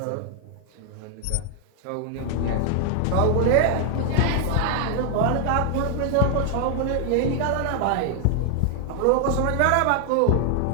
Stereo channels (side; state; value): both; different; correlation 0.00